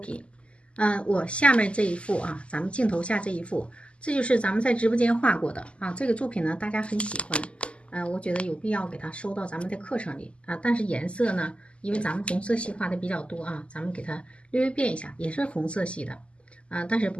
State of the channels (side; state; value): right; late; 0.056 ms